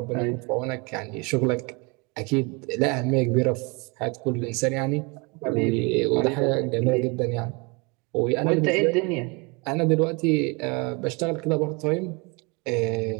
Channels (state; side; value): quieter; left; 29.5 dB